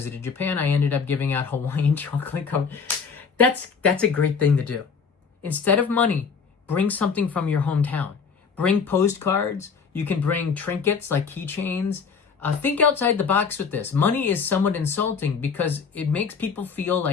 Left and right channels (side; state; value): right; quieter; 5.7 dB